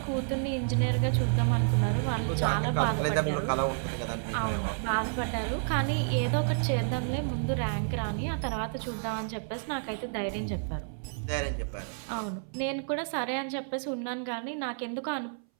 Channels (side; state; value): left; silent; 58 dB below the other